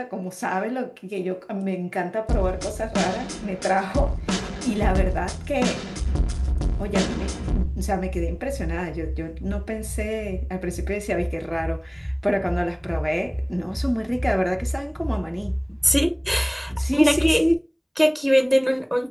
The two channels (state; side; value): identical; both; correlation 1.00